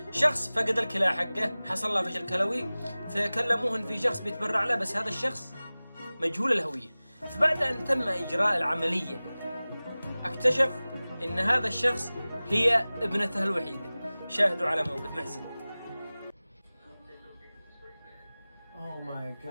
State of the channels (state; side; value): inverted; both; correlation -0.98